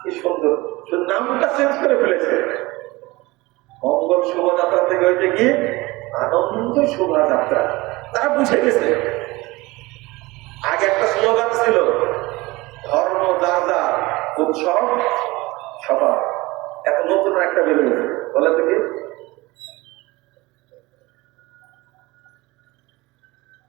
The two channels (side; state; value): left; quieter; 21.6 dB